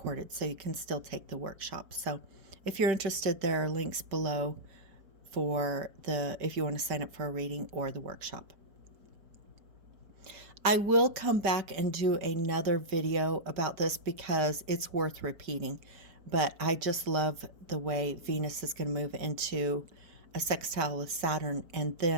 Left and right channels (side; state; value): left; late; 5.1 ms